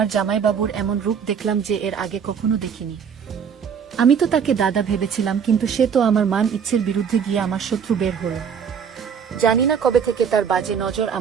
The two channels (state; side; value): quieter; left; 7.1 dB